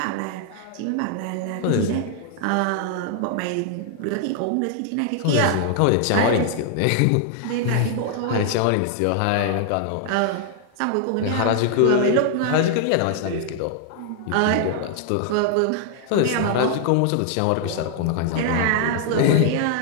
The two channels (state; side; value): different; both; correlation -0.01